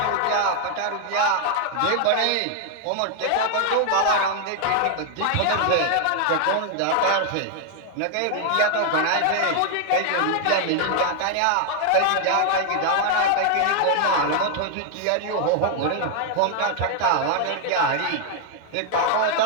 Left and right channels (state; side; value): different; both; correlation 0.00